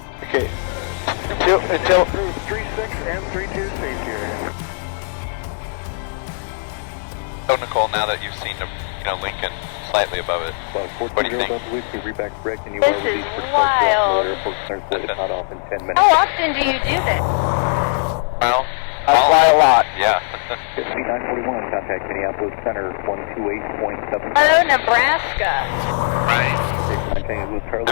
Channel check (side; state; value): right; silent; 66 dB below the other